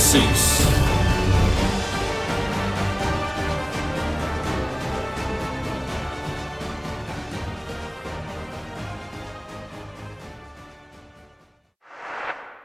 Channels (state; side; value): identical; both; correlation 1.00